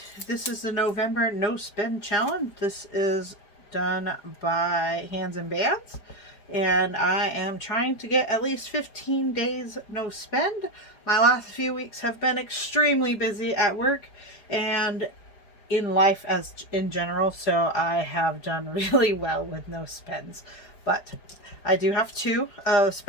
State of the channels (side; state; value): right; late; 4.9 ms